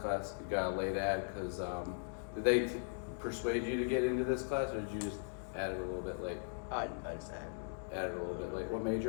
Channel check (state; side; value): silent; right; digital silence